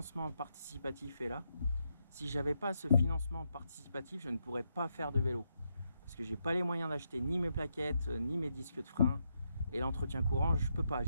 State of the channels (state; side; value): inverted; both; correlation -0.81